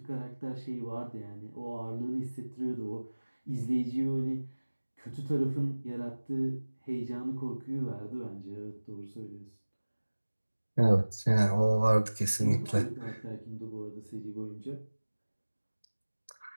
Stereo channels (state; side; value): inverted; both; correlation -1.00